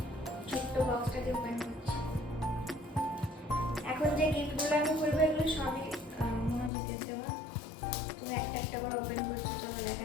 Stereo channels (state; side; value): drops out; right; at 6.7 s